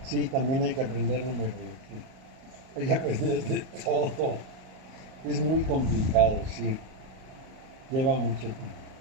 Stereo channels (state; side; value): late; left; 38 ms